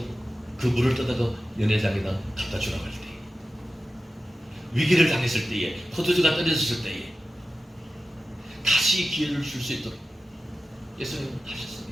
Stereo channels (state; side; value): normal; both; correlation 0.93